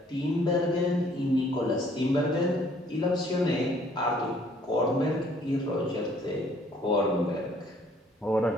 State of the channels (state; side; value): normal; both; correlation 0.61